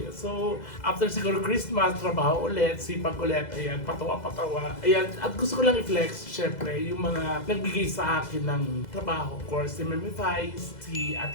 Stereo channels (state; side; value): late; right; 2.0 ms